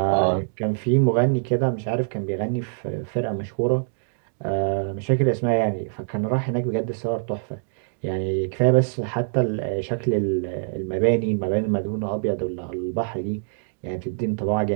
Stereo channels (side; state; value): left; silent; digital silence